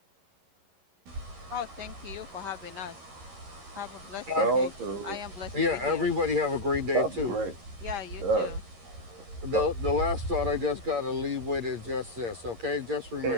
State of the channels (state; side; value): late; left; 11 ms